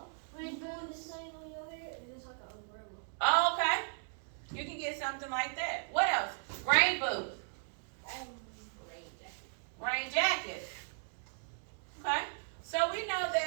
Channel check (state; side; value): silent; left; digital silence